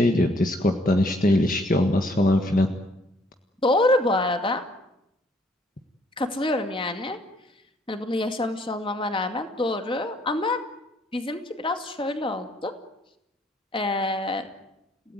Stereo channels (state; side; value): normal; both; correlation 0.65